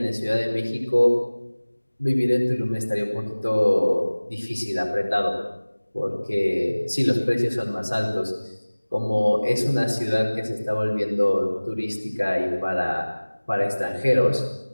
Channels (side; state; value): both; inverted; correlation -1.00